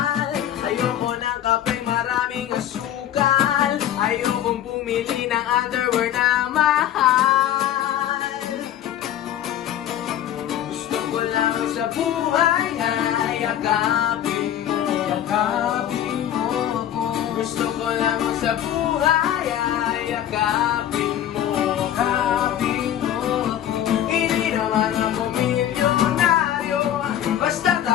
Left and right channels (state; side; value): quieter; right; 11.2 dB